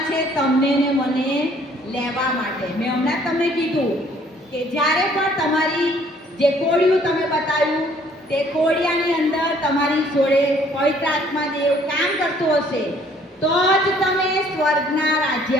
છે તમને ને મને લેવા માટે. મેં હમણાં તમને કીધું કે જ્યારે પણ તમારી જે કોળિયું તમે બતાવ્યું તે કોળિયાની અંદર તમારી જોડે પવિત્ર આત્મા દેવ કામ કરતો હશે તો જ તમે સ્વર્ગના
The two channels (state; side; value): normal; both; correlation 0.60